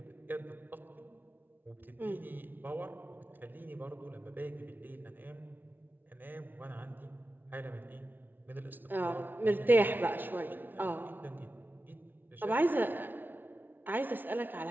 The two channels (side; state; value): left; late; 0.091 ms